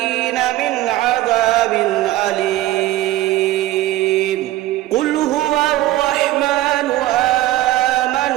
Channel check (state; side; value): quieter; left; 15.9 dB